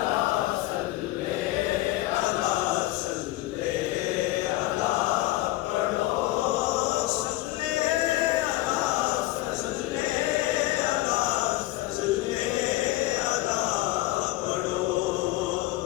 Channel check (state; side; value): quieter; right; 17.4 dB